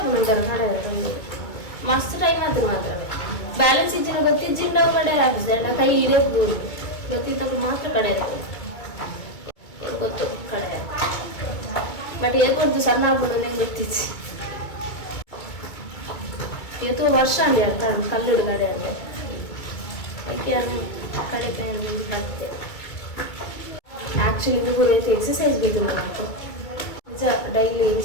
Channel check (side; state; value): right; late; 2.3 ms